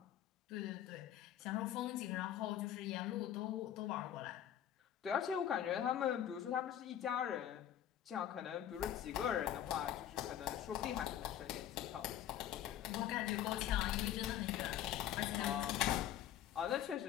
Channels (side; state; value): right; quieter; 10.9 dB